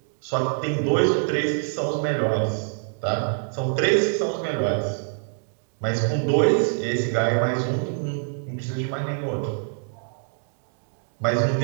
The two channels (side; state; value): left; silent; digital silence